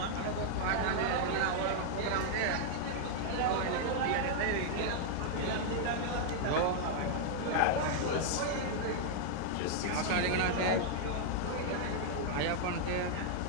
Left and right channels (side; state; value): both; different; correlation -0.01